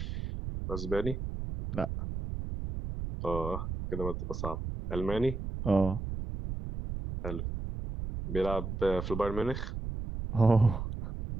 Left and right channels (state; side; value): noise; right; rumble, 5 dB below the sound